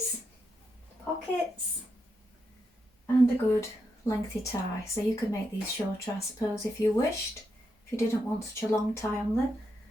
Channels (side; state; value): both; normal; correlation 0.83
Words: pockets, and a good lengthy tie. So you could make these shorter, I suppose, if you wished, if you didn't want such a long tie on them.